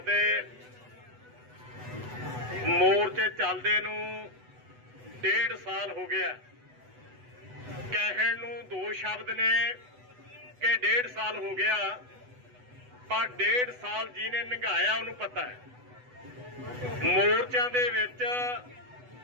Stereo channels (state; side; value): late; left; 8.1 ms